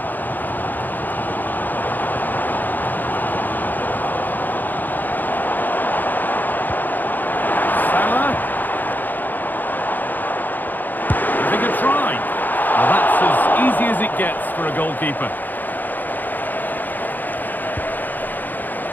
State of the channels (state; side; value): late; right; 0.086 ms